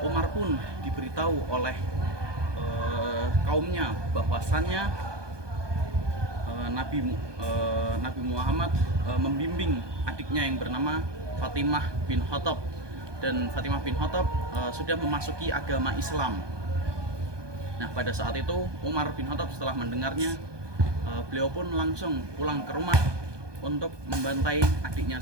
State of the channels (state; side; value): late; left; 1.2 ms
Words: Umar pun diberitahu oleh kaumnya bahwasannya Nabi Muhammad membimbing adiknya yang bernama Fatimah bin Khattab, dan Fatimah bin Khattab sudah memasuki agama Islam. Nah, pada saat itu Umar bin Khattab setelah mendengarnya, beliau pun langsung pulang ke rumah untuk membantai adiknya